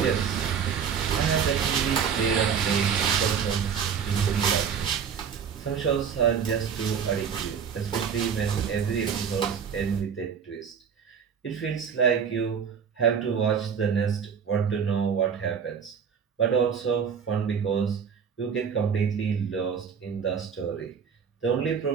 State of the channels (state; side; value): quieter; left; 7.0 dB